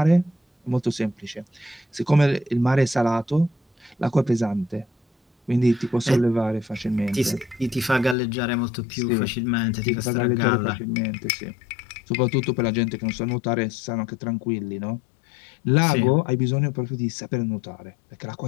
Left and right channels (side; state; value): right; drops out; at 8.2 s